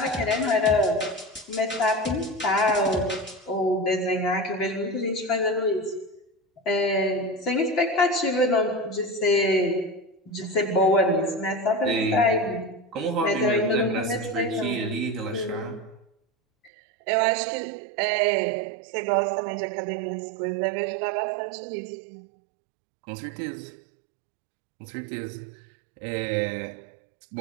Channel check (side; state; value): left; drops out; at 16.7 s